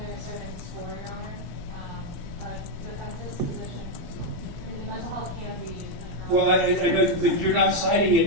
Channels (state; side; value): late; left; 17 ms